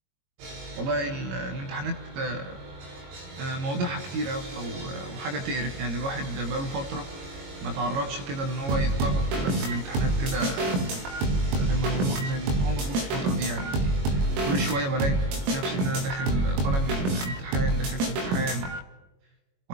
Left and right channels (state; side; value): late; left; 22 ms